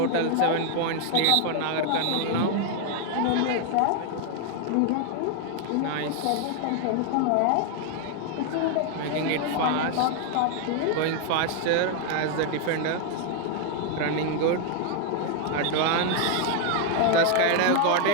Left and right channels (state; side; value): different; both; correlation 0.00